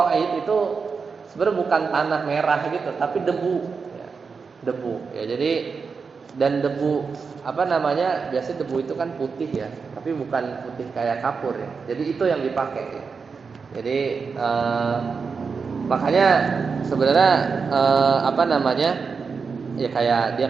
itu sebenarnya bukan tanah merah gitu, tapi debu ya. Debu ya. Jadi dan debu biasanya debu itu kan putih ya, tapi bukan putih kayak kapur ya. Jadi itu yang dipakai ya. Jadi makanya sebenarnya ya kayak dia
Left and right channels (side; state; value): left; quieter; 5.2 dB